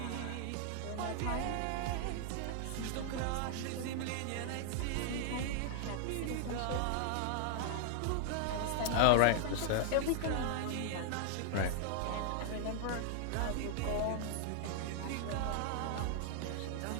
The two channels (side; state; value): both; different; correlation -0.01